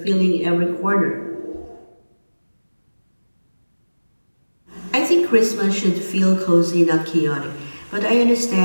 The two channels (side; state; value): both; inverted; correlation -1.00